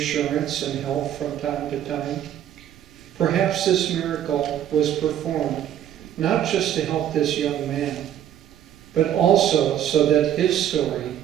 and help from time to time? Perhaps this miracle was performed not just to help this young man, but also so that his story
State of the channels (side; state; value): left; quieter; 10.6 dB